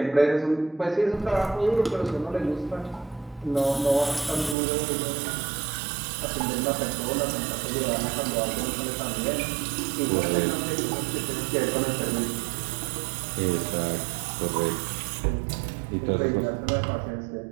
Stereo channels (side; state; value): left; drops out; at 4.5 s